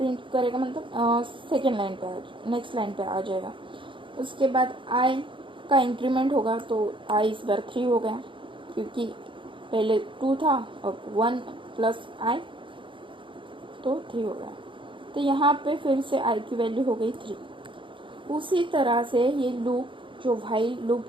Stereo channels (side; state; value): left; late; 0.24 ms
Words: मतलब सेकेंड लाइन पे नेक्स्ट लाइन पे आ जाएगा। उसके बाद i का इंक्रीमेंट होगा, तो i इस बार 3 हो गया, क्योंकि पहले 2 था और 1 प्लस i तो 3 हो गया। तो यहाँ पे फिर से i की वैल्यू हो गई 3। उसी तरह से ये लूप जो व्हाइल